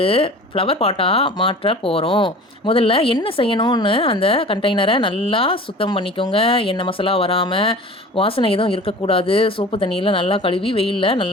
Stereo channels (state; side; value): normal; both; correlation 0.40